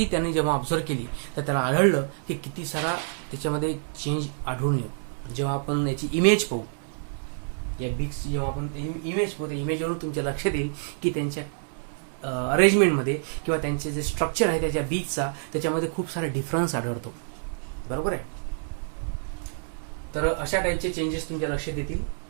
त्यांनी जेव्हा ऑब्झर्व केली तर त्याला आढळलं की किती सारा त्याच्यामध्ये चेंज आढळून येतो. जेव्हा आपण याची इमेज पाहू, या बीक्सची जेव्हा आपण इमेज पाहू, त्या इमेजवरून तुमच्या लक्षात येईल की त्यांच्या अरेंजमेंटमध्ये किंवा त्यांचे जे स्ट्रक्चर आहे त्याच्या बीचचा, त्याच्यामध्ये खूप सारा डिफरन्स आढळतो. बरोबर आहे, तर अशा टाईपचे चेंजेस तुमच्या लक्षात येतील.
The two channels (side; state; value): left; silent; 60 dB below the other